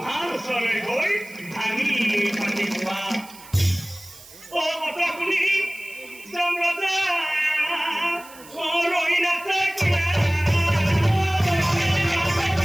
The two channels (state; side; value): noise; right; hiss, 20 dB below the sound